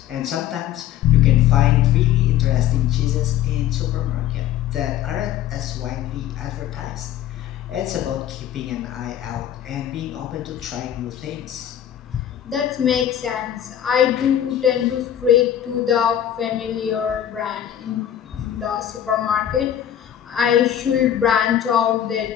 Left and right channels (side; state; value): right; quieter; 10.7 dB